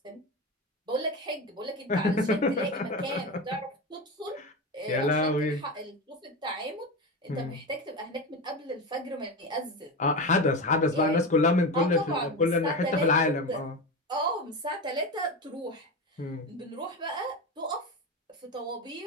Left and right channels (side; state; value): both; normal; correlation 0.21